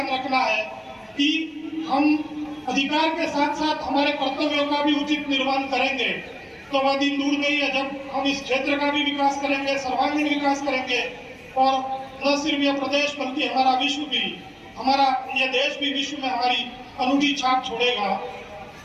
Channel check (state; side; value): identical; both; correlation 1.00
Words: रखना है कि हम अधिकार के साथ साथ हमारे कर्तव्यों का भी उचित निर्वहन करेंगे तो वह दिन दूर नहीं है जब हम इस क्षेत्र का भी विकास करेंगे, सर्वांगीण विकास करेंगे और न सिर्फ यह प्रदेश बल्कि हमारा विश्व भी, हमारा यह देश भी विश्व में हमारी अनूठी छाप छोड़ेगा।